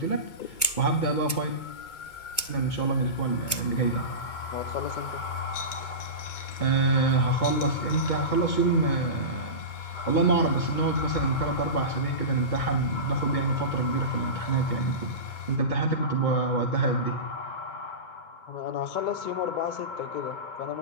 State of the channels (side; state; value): right; late; 2.2 ms